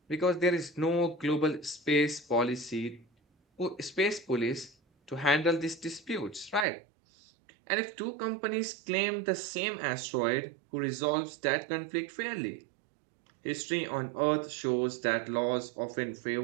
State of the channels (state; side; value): drops out; left; at 6.7 s